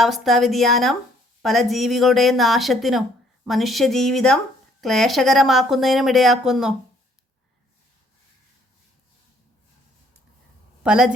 വ്യതിയാനം പല ജീവികളുടെയും നാശത്തിനും മനുഷ്യജീവിതം ക്ലേശകരമാക്കുന്നതിനും ഇടയാക്കുന്നു. പല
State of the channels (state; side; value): normal; both; correlation 0.64